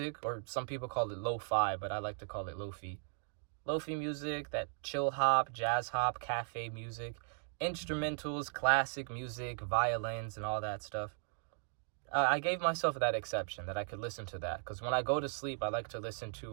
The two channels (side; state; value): left; silent; 53 dB below the other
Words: or some people call it lo-fi, but I like to call it lo-fi. Lo-fi music, that chill hop, jazz hop, cafe music. Instrumentals, classic music, violins, and all that stuff. I gave myself that exception that I could listen to that, because when I go to sleep, I like to listen